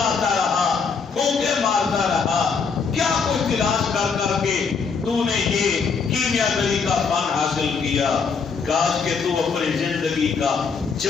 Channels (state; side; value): quieter; right; 5.4 dB